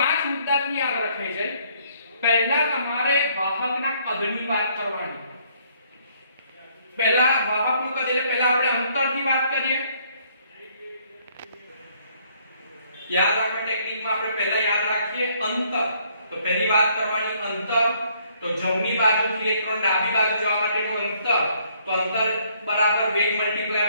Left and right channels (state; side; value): inverted; both; correlation -0.66